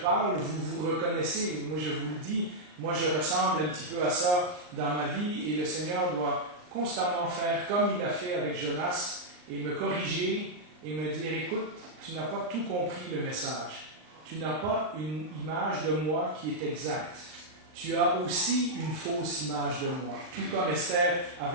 vous vous reconnaissez. Moi, je vous le dis, moi, je ressemble un petit peu à ça dans ma vie et le Seigneur doit constamment faire comme il a fait avec Jonas et me corriger et me dire, écoute, tu n'as pas tout compris le message. Tu n'as pas une image de moi qui est exacte. Tu as aussi une fausse image de moi, tout comme Esther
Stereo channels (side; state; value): left; late; 39 ms